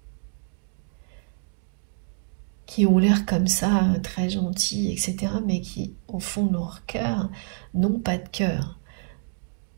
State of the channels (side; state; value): left; silent; 56 dB below the other